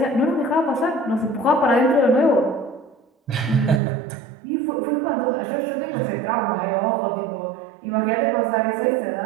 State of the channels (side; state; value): left; drops out; at 3.8 s